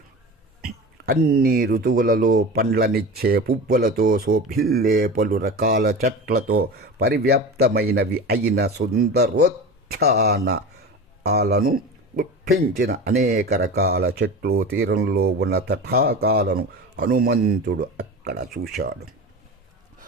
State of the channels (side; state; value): both; normal; correlation 0.30